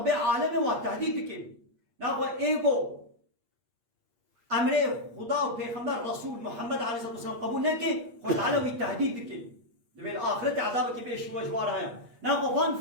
عالمي والتهديد كيف ناخذ ايجو امر خدا و پیغمبر رسول محمد عليه الصلاه والسلام قبول نكي خد علوي التهديد كيف بالاخره عذابك بيش وجوارها ناخذ فان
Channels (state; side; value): late; left; 8.6 ms